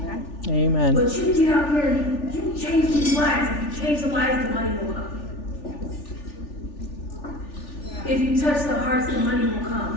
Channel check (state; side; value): late; right; 3.4 ms